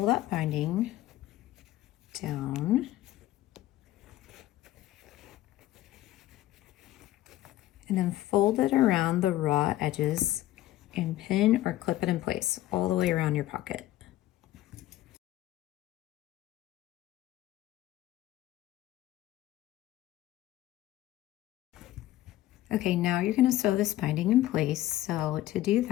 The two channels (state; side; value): quieter; right; 14.9 dB